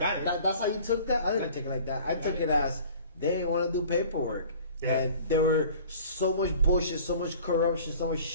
it. That's how you took that? I didn't take it like that. I took it as they didn't want to do paperwork. Yeah. And there were so much bullshit, so much corruption, so much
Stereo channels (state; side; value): inverted; both; correlation -0.47